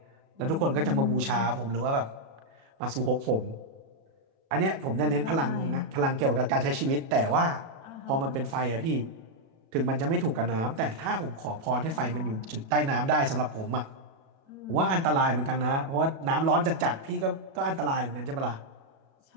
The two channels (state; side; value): late; left; 37 ms